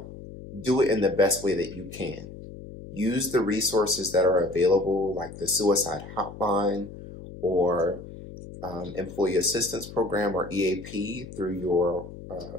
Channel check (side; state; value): left; noise; hum, 14 dB below the sound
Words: do it in the best way that you can. Use the resources that are available, like the suicide hotline or employee assistance program or EAP through your